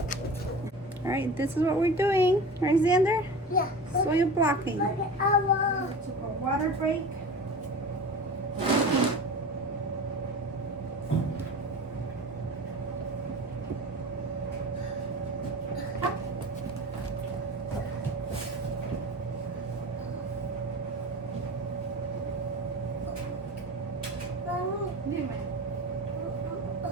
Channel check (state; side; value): normal; both; correlation 0.33